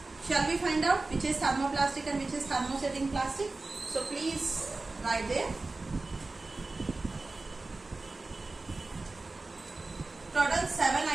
Shall we find out which is thermoplastic and which is thermosetting plastic? So please write there. Total 7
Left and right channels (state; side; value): quieter; left; 3.4 dB